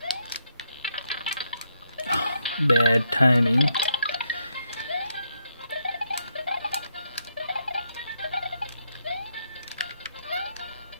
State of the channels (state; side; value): inverted; both; correlation -0.78